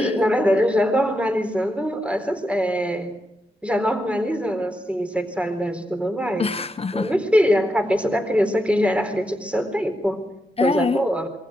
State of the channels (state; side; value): normal; both; correlation 0.84